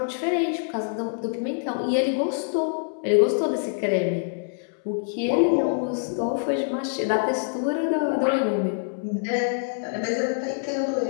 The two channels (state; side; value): silent; right; 62 dB below the other